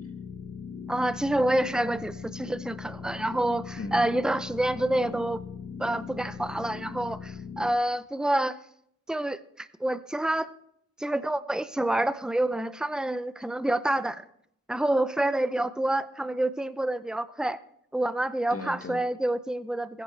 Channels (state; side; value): normal; both; correlation 0.93